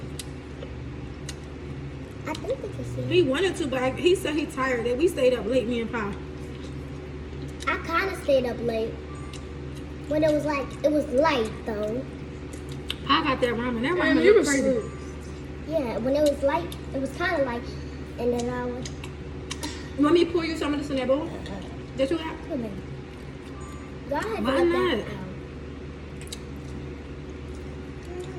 I think they can see. He wanted to, but he said he tired. That we stayed up late, me and Pa. I kind of stayed up late. When it was light though. I got that ramen. That ramen you was crazy. Yeah, when it was light, it was kind of light. And then I was... You want me to pour you some of this in that bowl? That you got? Come on. Go ahead. Why not?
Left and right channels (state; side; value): identical; both; correlation 1.00